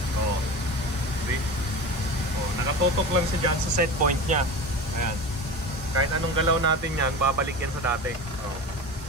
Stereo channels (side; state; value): both; normal; correlation 0.30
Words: Oh. See? Oh, nakatutok lang siya dyan sa set point niya. Ayan. Kahit anong galaw natin yan, babalik yan sa dati. Oh.